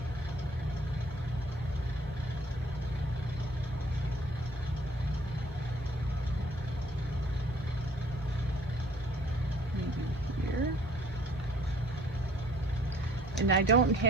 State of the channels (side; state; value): both; normal; correlation 0.57